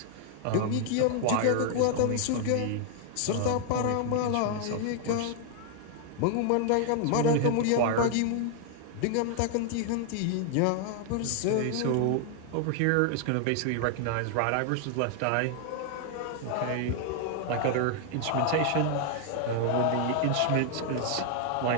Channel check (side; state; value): both; different; correlation 0.00